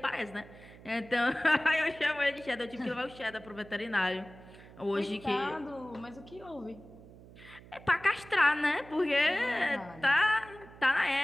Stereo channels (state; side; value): noise; right; hum, 20 dB below the sound